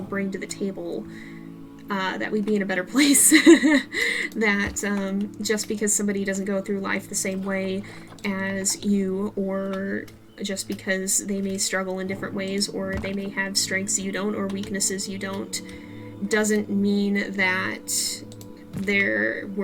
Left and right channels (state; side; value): identical; both; correlation 1.00